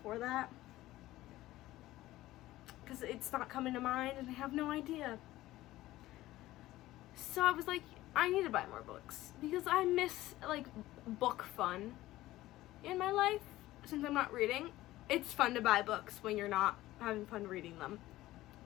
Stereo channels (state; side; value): quieter; right; 16.3 dB